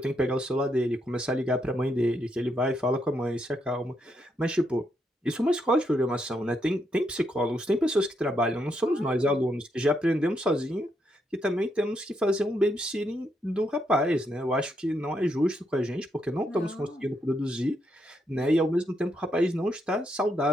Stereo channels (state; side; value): normal; both; correlation 0.78